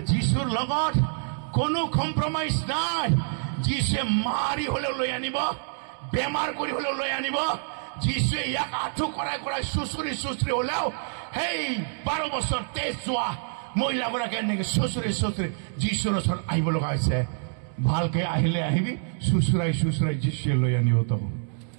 যীশুৰ লগত কোনো কম্প্ৰমাইজ নাই। যীশুৱে মাৰি হলেও লৈ আনিব, বেমাৰ কৰি হলেও লৈ আনিব। যীশুৱে ইয়াক আঁঠু কৰাই কৰাই চুচুৰি চুচুৰি হলেও সেই 12 বছৰ তেজ যোৱা মহিলাগৰাকী এনেকে চুচুৰি চুচুৰি যীশুৰ ওচৰত আহিব লগা হৈছে। ভালকে আহিলে আহিবি, চুচুৰাই চুচুৰাই যীশুৱে লৈ আনিব তক।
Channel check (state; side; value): silent; left; digital silence